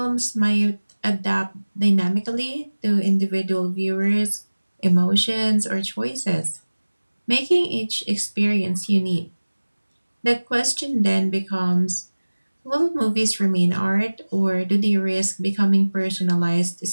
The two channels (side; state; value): both; inverted; correlation -1.00